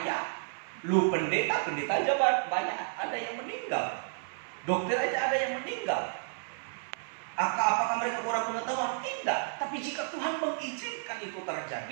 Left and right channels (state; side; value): silent; left; 57 dB below the other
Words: lu pendeta aja banyak, ada yang meninggal. Dokter aja ada yang meninggal. Apakah mereka kurang pengetahuan? Tidak. Tapi jika Tuhan mengizinkan itu